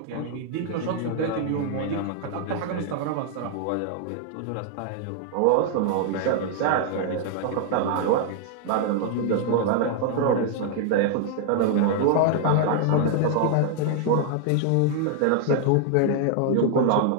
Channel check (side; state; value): both; different; correlation 0.00